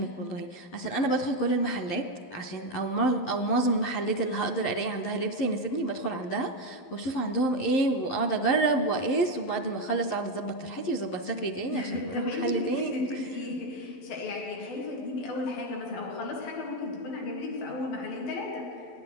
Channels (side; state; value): right; late; 11 ms